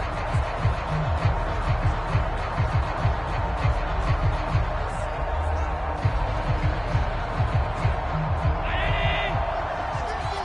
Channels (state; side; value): identical; both; correlation 1.00